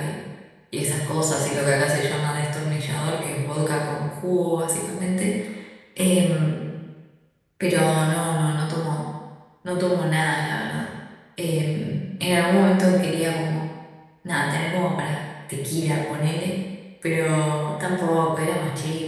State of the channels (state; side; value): identical; both; correlation 1.00